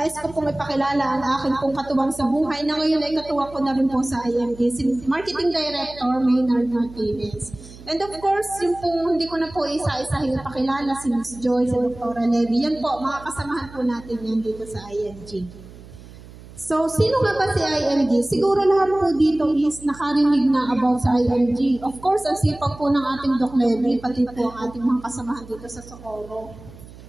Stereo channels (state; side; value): noise; right; hum, 18 dB below the sound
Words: ko pong ipakilala ang aking pong katuwang sa buhay na ngayon ay katuwang ko na rin po sa IMG, si Marketing Director Maynard Martinez. And of course, yung pong hindi ko na po isa-isahin ipakilala, si Ms. Joy, si Dr. Levy, yan po, mga kasamahan po natin yan dito sa IMG. So, sino nga ba si IMG? Siguro lahat po dito is nakarinig na about sa IMG. Of course, ang sipag po ng ating Doc Levy, pati po ang ating mga kasamahan dito sa Socorro.